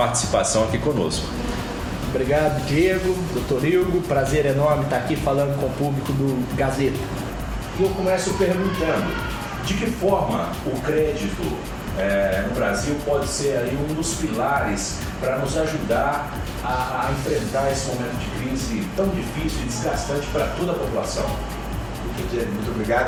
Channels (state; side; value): identical; both; correlation 1.00